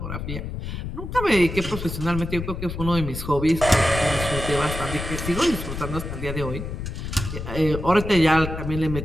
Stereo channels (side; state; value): left; noise; rumble, 6 dB below the sound